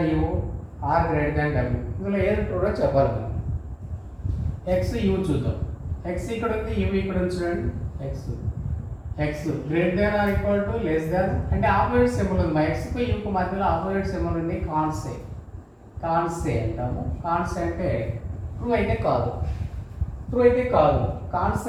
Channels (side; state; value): both; identical; correlation 1.00